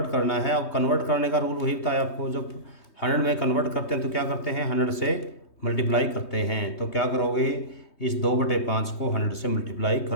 करना है। अब कन्वर्ट करने का रूल वही बताया आपको, जब 100 में कन्वर्ट करते हैं तो क्या करते हैं, 100 से मल्टीप्लाई करते हैं। तो क्या करोगे, इस 2/5 को 100 से मल्टीप्लाई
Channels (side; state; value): right; late; 3.2 ms